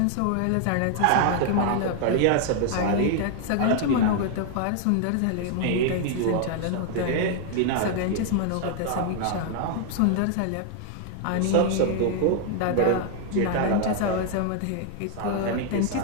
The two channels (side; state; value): both; different; correlation 0.00